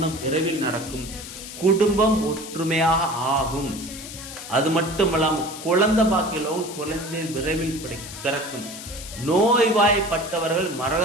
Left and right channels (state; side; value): noise; left; hiss, 12 dB below the sound